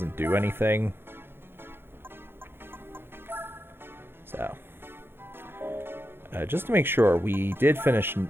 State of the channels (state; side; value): late; left; 0.11 ms